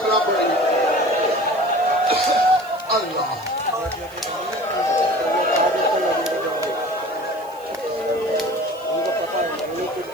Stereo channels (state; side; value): noise; right; hiss, 24 dB below the sound